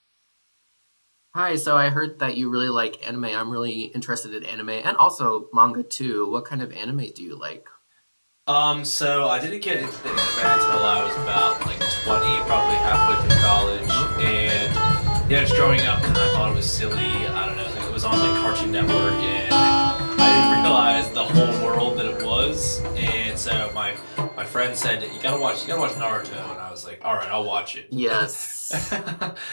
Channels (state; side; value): inverted; both; correlation -1.00